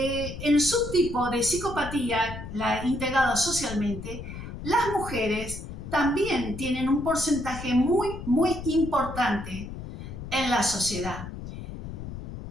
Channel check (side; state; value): left; noise; rumble, 9 dB below the sound